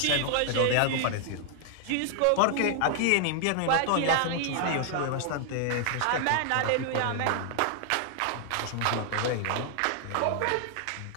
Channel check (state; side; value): different; both; correlation 0.00